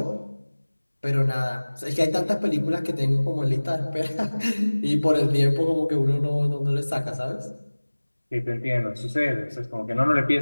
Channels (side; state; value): both; inverted; correlation -1.00